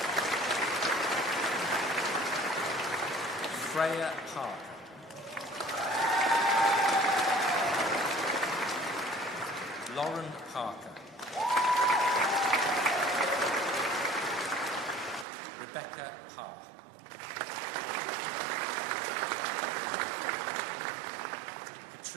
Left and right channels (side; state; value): left; drops out; at 15.2 s